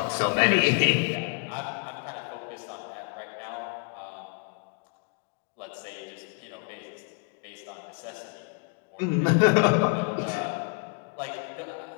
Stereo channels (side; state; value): right; quieter; 37.2 dB